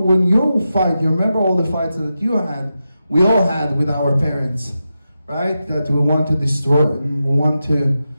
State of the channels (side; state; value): both; inverted; correlation -0.90